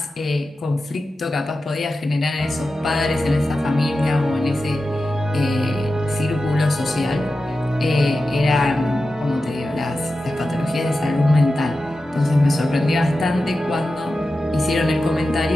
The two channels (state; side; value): normal; both; correlation 0.92